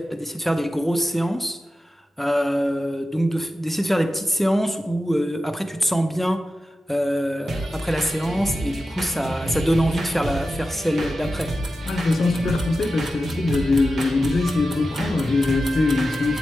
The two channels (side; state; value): both; normal; correlation 0.92